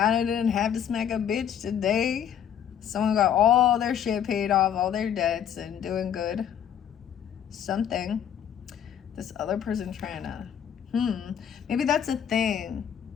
I didn't have to smack a bitch today. Someone got all their shit paid off, all their debts, and doing good. Something. This other person trying to, maybe that's a thing.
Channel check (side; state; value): right; quieter; 9.1 dB